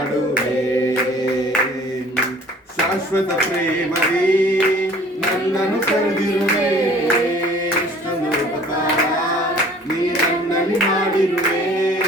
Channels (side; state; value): both; normal; correlation 0.51